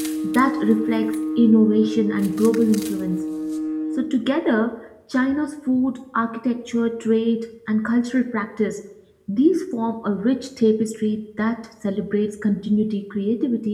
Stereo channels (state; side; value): identical; both; correlation 1.00